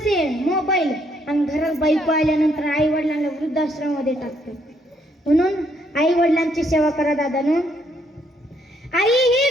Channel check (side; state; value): both; normal; correlation 0.71